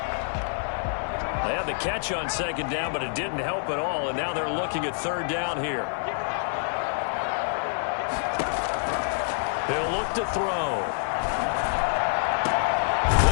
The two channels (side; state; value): right; silent; 59 dB below the other